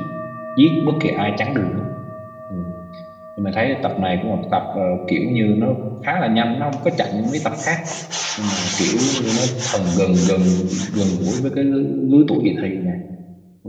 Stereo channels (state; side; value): identical; both; correlation 1.00